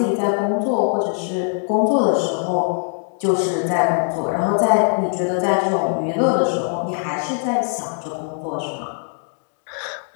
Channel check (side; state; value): right; silent; 63 dB below the other